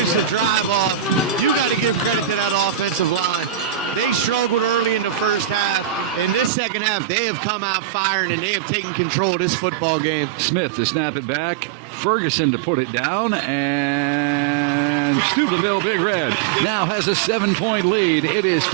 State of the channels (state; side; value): drops out; left; at 6.5 s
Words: the drive off. You got to give credit to that offensive line. They struggled early in the first half. In this second half, they have come out firing, and they have taken control of this football game. Smith to snap it back. Ferguson to put it down, and Steubenville Big Red now has a 7-point lead. It is